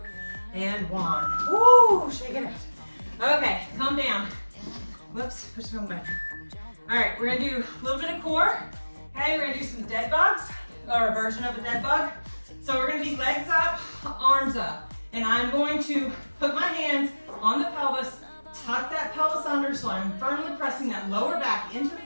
and 1. Woo, shaking it. Okay, calm down. Whoops, push it on back. All right, we're gonna do a little bit of core. Okay, we're gonna do some dead bugs, or a version of a dead bug. So we're gonna be legs up, arms up. And I'm going to put my hands on the pelvis, tuck that pelvis under so I'm firmly pressing that lower back into the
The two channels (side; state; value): both; inverted; correlation -1.00